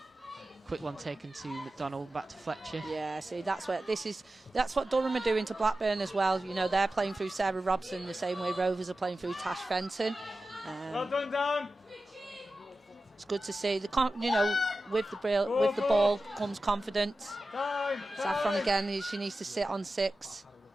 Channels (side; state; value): both; normal; correlation 0.94